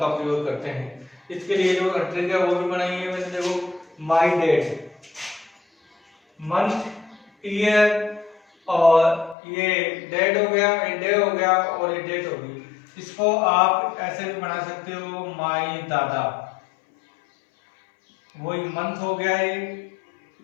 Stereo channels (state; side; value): drops out; right; at 9.3 s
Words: प्रयोग करते हैं। इसके लिए जो ट्रिक है वो भी बनाई है मैंने, देखो माई डेट, मंथ, ईयर और ये डेट हो गया, डे हो गया और ये डेट होगी। इसको आप ऐसे भी बना सकते हो, माई दादा, वही मंथ हो गया,